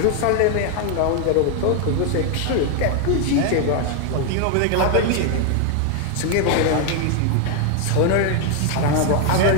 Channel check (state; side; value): different; both; correlation 0.00